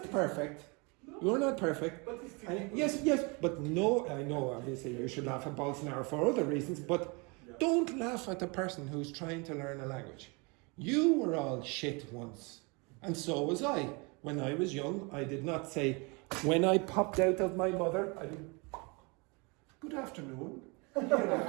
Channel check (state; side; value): quieter; left; 29.9 dB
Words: perfect. You're not perfect. But it's And yes, but no, I know obviously you should laugh at Bolsonaro for other reasons, but don't laugh at the person who's trying to learn a language. You were all shit once, and so was I. When I was young, I did not say, when I popped out of my mother, I did, good afternoon. I